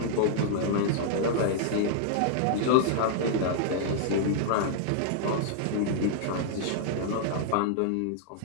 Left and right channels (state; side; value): different; both; correlation -0.01